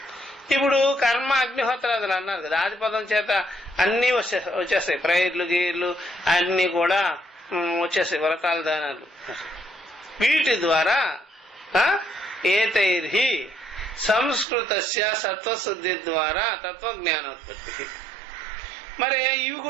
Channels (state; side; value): drops out; left; at 14.5 s